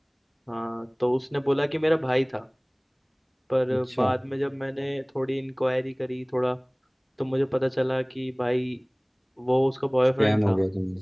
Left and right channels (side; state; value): both; identical; correlation 1.00